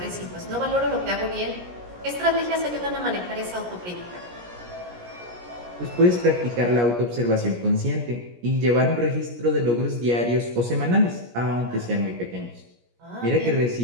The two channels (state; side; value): late; left; 17 ms